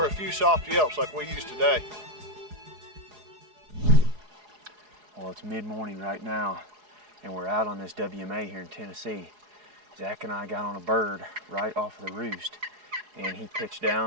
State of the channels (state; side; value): late; left; 4.8 ms